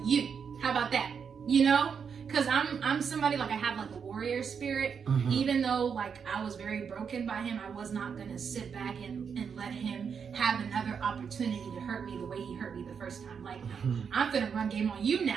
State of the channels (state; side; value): quieter; left; 6.6 dB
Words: you. How about that? You know? Because I'm somebody, like, I have like a warrior spirit. Even though like I was very broken by him, I was not gonna sit back and let him have another opportunity to hurt me the way he hurt me the first time. Like, I'm gonna run game on you